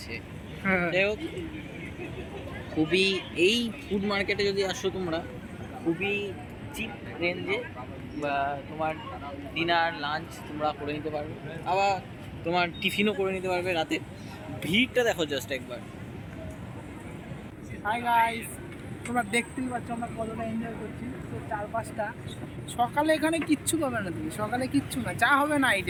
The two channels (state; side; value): identical; both; correlation 1.00